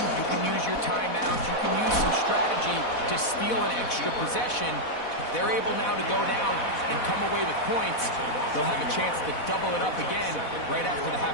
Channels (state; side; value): late; right; 4.1 ms